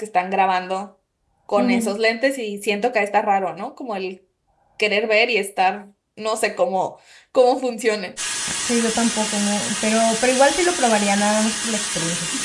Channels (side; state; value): both; identical; correlation 1.00